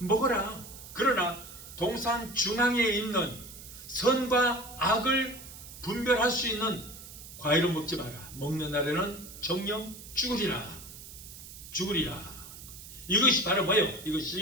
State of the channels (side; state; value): right; noise; hiss, 15 dB below the sound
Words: 그러나 동산 중앙에 있는 선과 악을 분별할 수 있는 과일은 먹지 마라. 먹는 날에는 정령 죽으리라. 이것이 바로 뭐예요?